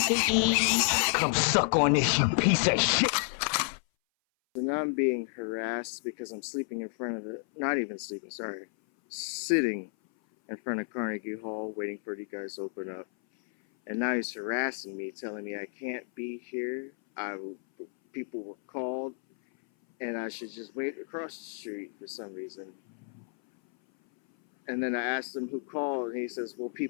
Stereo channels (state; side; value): silent; right; 57 dB below the other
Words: piggy. Come suck on this, you piece of shit. And I'm being harassed because I'm sleeping in front of the, not even sleeping, sorry, sitting in front of Carnegie Hall waiting for you guys to open up. And now he's harassing me, telling me I can't be here. People were called and I should just wait across the street for some reason. And then I asked him who called, and he says, well,